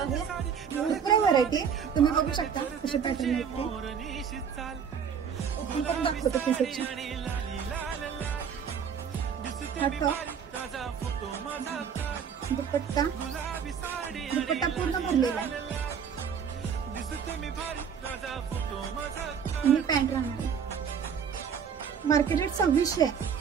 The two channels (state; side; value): quieter; left; 7.2 dB